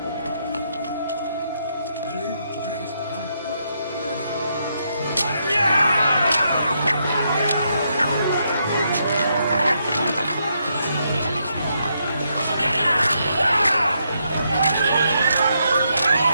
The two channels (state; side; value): inverted; both; correlation -0.78